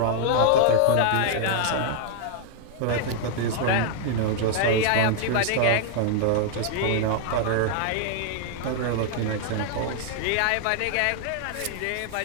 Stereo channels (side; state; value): both; different; correlation 0.00